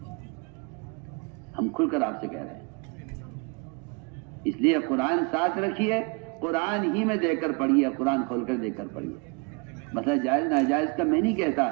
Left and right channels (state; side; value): quieter; left; 32.7 dB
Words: ہم کھل کر آپ سے کہہ رہے ہیں، اس لیے قرآن ساتھ رکھیے، قرآن ہی میں دیکھ کر پڑھیے، قرآن کھول کر دیکھ کر پڑھیے۔ مسئلہ جائز ناجائز کا میں نہیں کہتا،